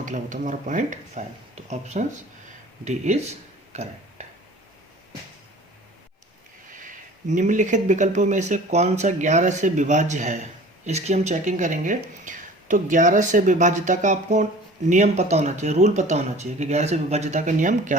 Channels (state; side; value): normal; both; correlation 0.44